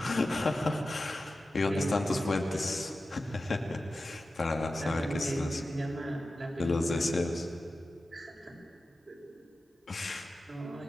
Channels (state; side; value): normal; both; correlation 0.93